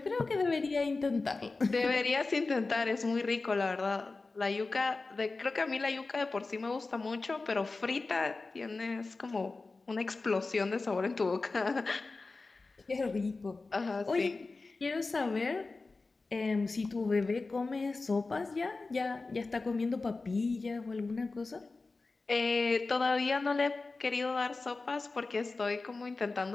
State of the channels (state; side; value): quieter; right; 3.7 dB